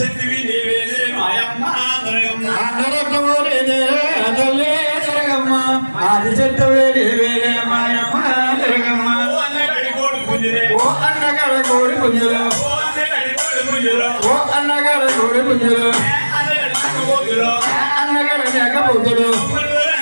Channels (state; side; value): inverted; both; correlation -1.00